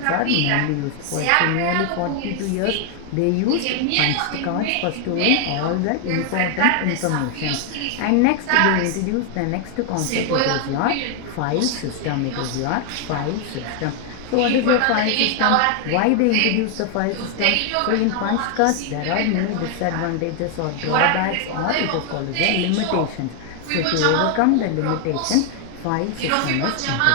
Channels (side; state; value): both; different; correlation 0.00